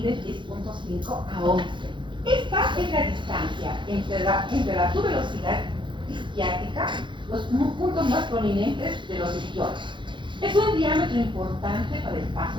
10,5 a 11. Esta es la distancia entre la tuberosidad isquiática, los puntos más prominentes de los isquiones. Es un diámetro importante para el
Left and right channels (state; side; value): late; left; 0.23 ms